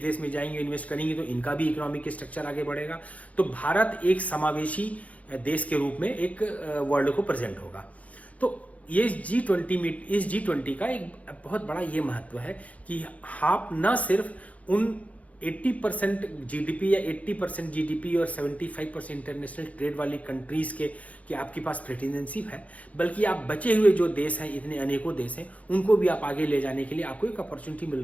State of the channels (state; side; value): late; right; 0.068 ms